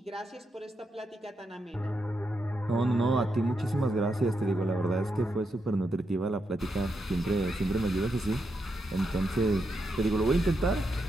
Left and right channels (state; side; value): normal; both; correlation 0.83